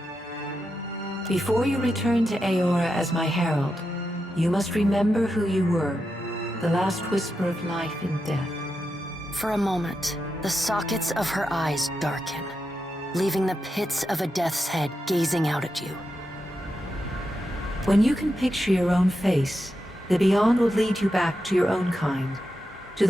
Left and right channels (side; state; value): both; normal; correlation 0.87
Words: Before you return to Eora as my herald, you must remember who you were, the last whisper of life in death. For a moment, the sockets of her eyes darken, leaving the pits of a death's head gazing out at you. When you can picture your own face, the Beyond will lead you back to your own kind, to